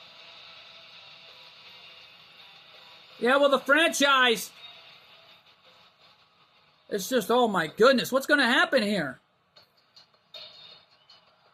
Yeah, well, the franchise, it's just, oh my goodness, what's going to happen here?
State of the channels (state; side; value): identical; both; correlation 1.00